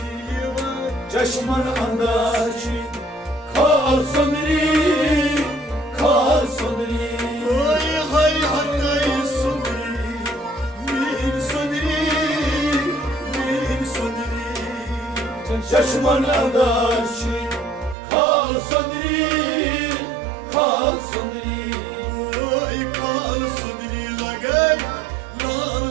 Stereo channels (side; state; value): left; drops out; at 17.9 s